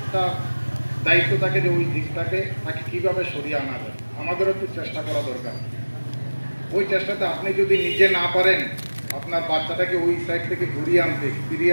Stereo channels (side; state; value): both; inverted; correlation -1.00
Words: একটা দায়িত্ব থাকে যে ওই দিকটাকে তাকে কীভাবে সরিয়ে আনা যায় আমাদেরও একটু চেষ্টা করা দরকার ওই চেষ্টাতে আপনি যদি নিজে না পারেন আপনার বাচ্চাটাকে ওই সাইড থেকে